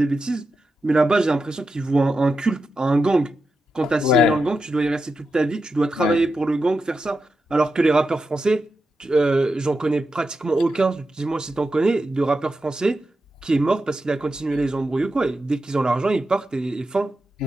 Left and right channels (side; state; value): both; normal; correlation 0.89